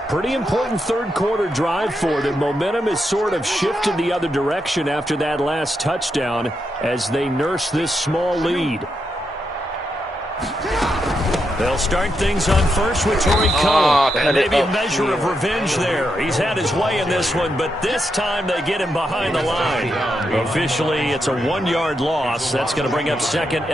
Pretty important 3rd quarter drive for them. Momentum has sort of shifted the other direction after that last touchdown as they nurse this small lead. They'll start things on first with Torrey Cohen. And maybe a measure of revenge there. He's had his way in this one, but this time they get him behind the line. Officially, it's a 1-yard loss. That's going to bring up 2nd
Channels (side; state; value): both; normal; correlation 0.83